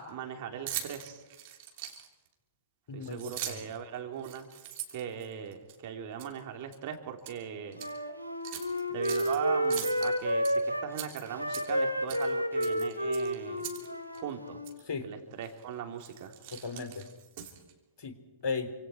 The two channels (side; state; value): both; inverted; correlation -0.72